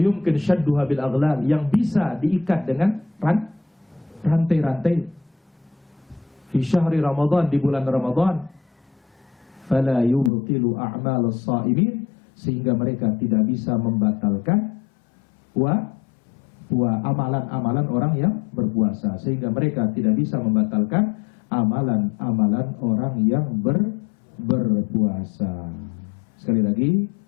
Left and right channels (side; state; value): right; drops out; at 10.3 s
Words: syadduha bil aghlal, yang bisa diikat dengan rantai-rantai. Fi syahri Ramadan, di bulan Ramadan. Fala yubtilu a'malus sha'imin, sehingga mereka tidak bisa membatalkan amalan-amalan orang yang berpuasa, sehingga mereka tidak bisa membatalkan amalan-amalan orang yang berpuasa. Sekali lagi,